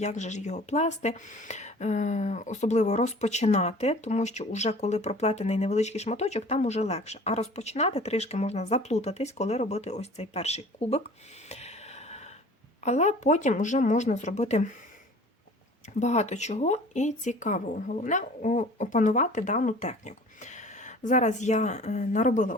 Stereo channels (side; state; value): both; normal; correlation 0.46